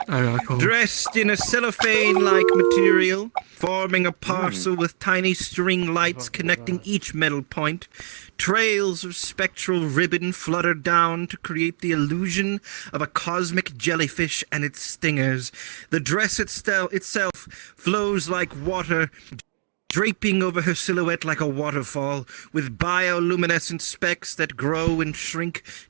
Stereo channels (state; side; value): silent; left; digital silence